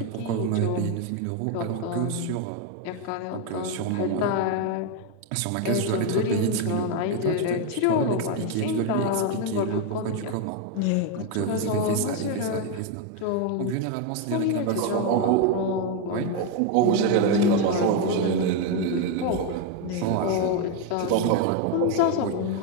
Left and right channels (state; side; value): different; both; correlation 0.02